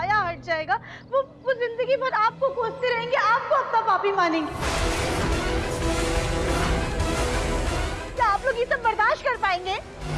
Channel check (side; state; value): both; identical; correlation 1.00